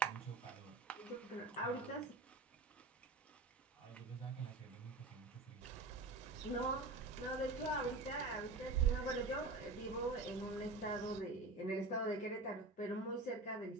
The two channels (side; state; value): left; quieter; 3.4 dB